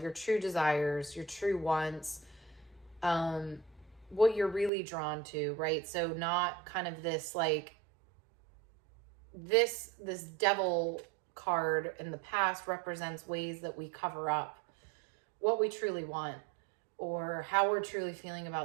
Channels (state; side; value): drops out; left; at 4.7 s